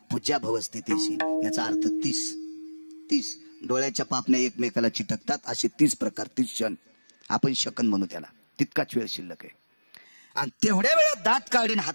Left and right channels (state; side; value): inverted; both; correlation -1.00